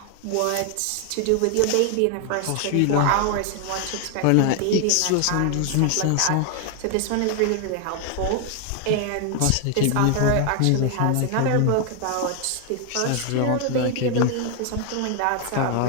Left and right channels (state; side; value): different; both; correlation 0.00